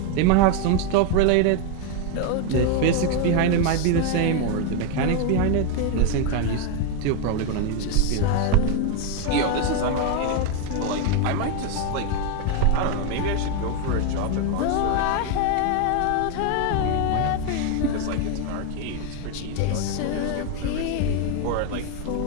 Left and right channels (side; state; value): both; different; correlation 0.01